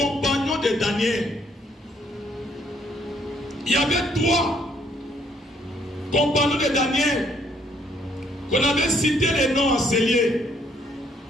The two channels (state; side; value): normal; both; correlation 0.67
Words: de Daniel. Il y avait 3 compagnons de Daniel qu'on avait cité les noms enseignés.